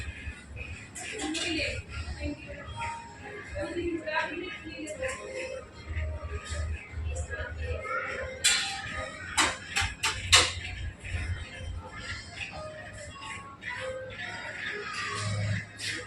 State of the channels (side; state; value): both; identical; correlation 1.00